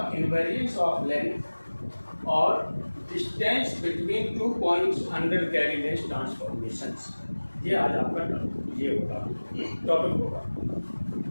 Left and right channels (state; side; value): inverted; both; correlation -1.00